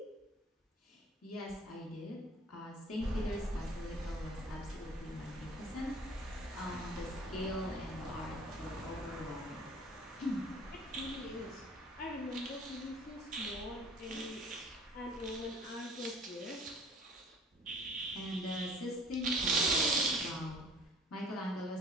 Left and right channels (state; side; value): normal; both; correlation 0.51